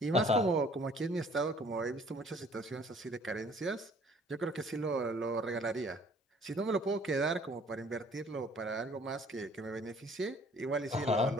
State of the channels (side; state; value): both; normal; correlation 0.56